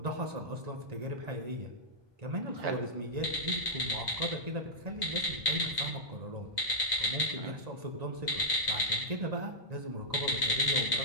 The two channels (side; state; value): left; late; 1.9 ms